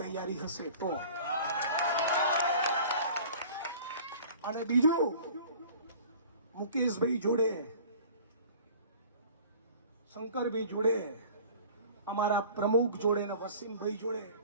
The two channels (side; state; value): both; inverted; correlation -0.45